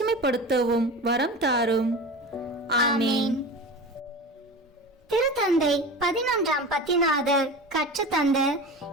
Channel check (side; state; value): both; normal; correlation 0.31